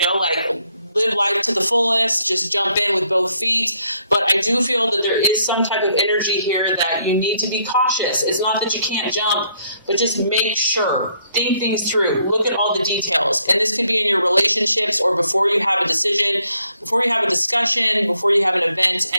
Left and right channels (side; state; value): both; inverted; correlation -0.71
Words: know, like live life to the fullest, just jump in with both feet. But I do feel that there is some type of energy here that you need to be cautious. It's not that you can't jump, but just make sure. Think things through. Look at all the details. And this could be in your relationships or before you have a decision, before you have a discussion, before you have an event.